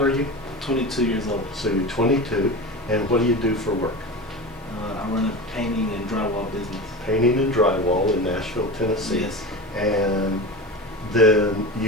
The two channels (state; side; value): normal; both; correlation 0.27